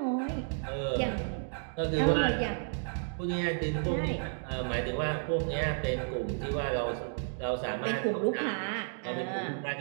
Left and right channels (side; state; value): left; silent; digital silence